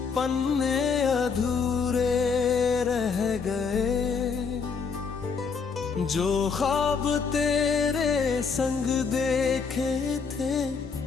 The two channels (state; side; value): quieter; right; 5.5 dB